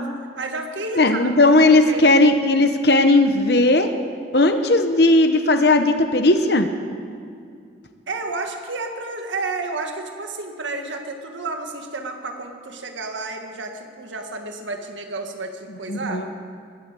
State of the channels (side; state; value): both; normal; correlation 0.25